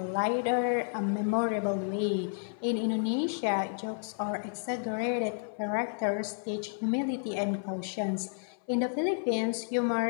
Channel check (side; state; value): right; silent; 57 dB below the other